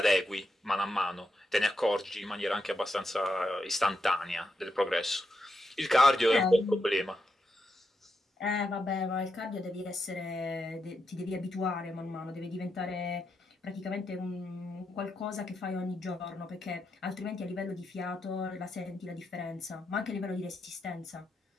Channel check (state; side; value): normal; both; correlation 0.83